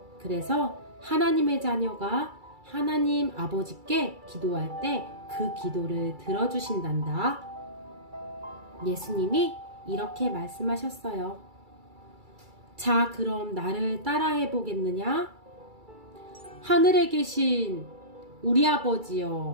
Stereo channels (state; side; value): late; left; 2.3 ms